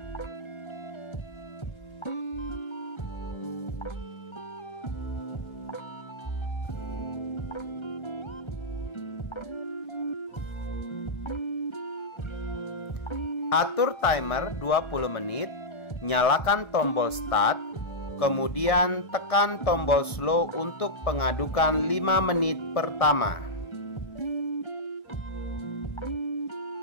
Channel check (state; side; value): late; right; 1.3 ms